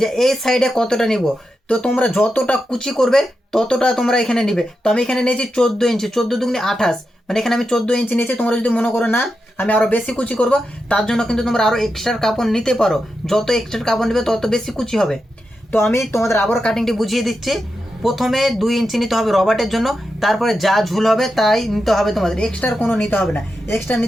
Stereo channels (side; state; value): both; normal; correlation 0.88